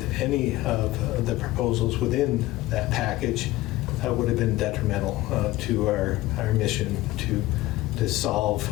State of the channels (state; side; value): quieter; right; 17.4 dB